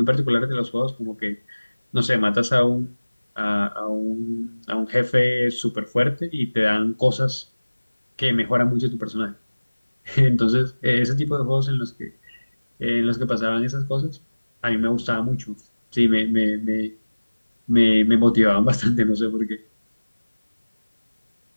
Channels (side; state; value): both; inverted; correlation -1.00